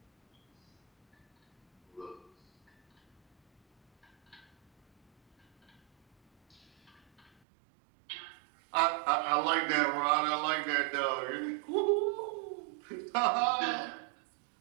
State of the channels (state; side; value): drops out; left; at 7.3 s